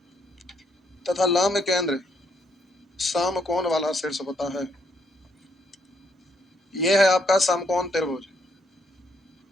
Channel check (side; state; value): both; normal; correlation 0.72